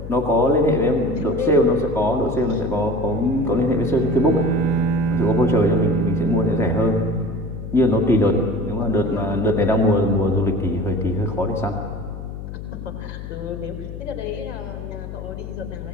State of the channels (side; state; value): left; noise; hum, 10 dB below the sound